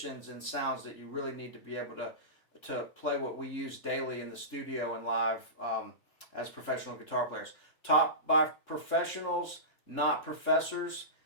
and sounds that you really need to be able to play what we use daily in the studio and live as professional guitar players. Taught by professionals, not professors.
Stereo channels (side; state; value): right; late; 3.7 ms